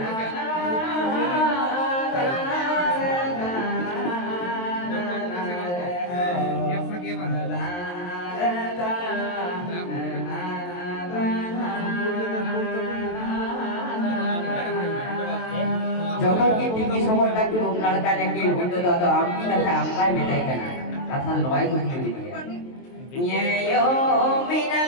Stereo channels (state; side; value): late; right; 23 ms